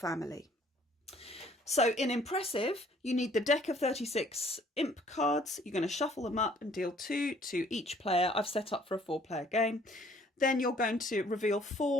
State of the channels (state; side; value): normal; both; correlation 0.59